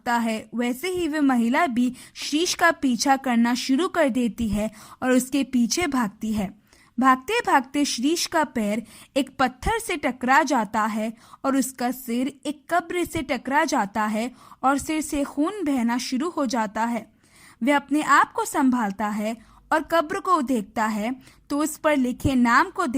है वैसे ही वे महिला भी श्रीश का पीछा करना शुरू कर देती है और उसके पीछे भागती है। भागते भागते श्रीश का पैर एक पत्थर से टकरा जाता है और उसका सिर एक कब्र से टकरा जाता है और सिर से खून बहना शुरू हो जाता है। वह अपने आप को संभालता है और कब्र को देखता है तो उस पर लिखे नाम को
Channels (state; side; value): identical; both; correlation 1.00